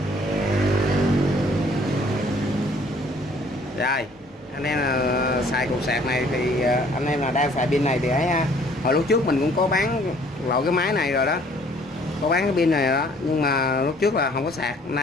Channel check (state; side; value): normal; both; correlation 0.58